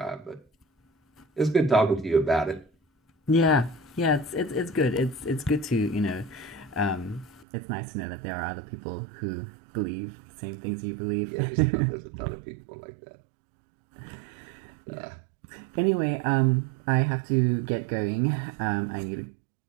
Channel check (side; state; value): left; drops out; at 7.5 s